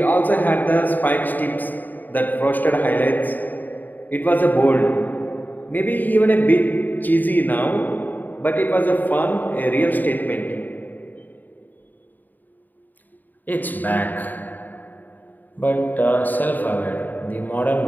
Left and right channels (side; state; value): right; late; 0.087 ms